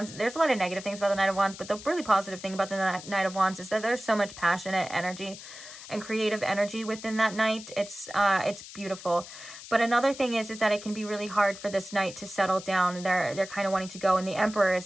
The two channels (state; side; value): noise; left; hiss, 14 dB below the sound